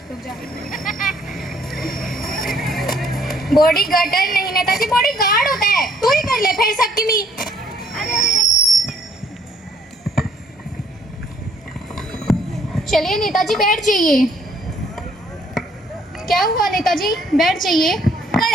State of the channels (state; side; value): normal; both; correlation 0.63